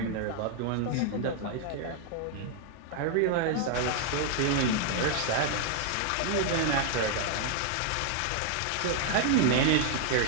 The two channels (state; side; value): different; both; correlation 0.00